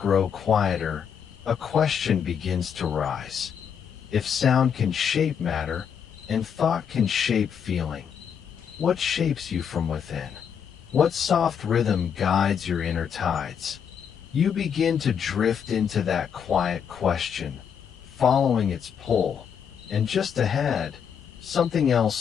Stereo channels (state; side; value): quieter; right; 7.6 dB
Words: quieter, a question begins to rise. If sound can shape matter, and thought can shape feeling, what shapes you from within? What soft rhythm guides your inner tides? You begin to drift into that quiet question, following its pull, and just ahead, something else